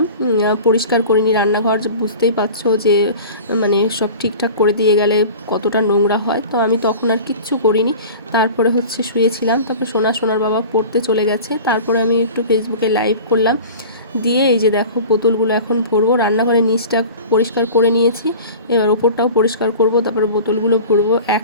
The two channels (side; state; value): both; inverted; correlation -0.39